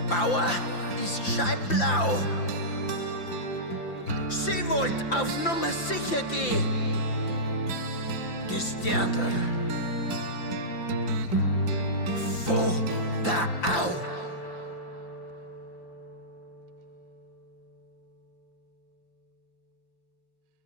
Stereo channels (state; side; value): late; right; 5.8 ms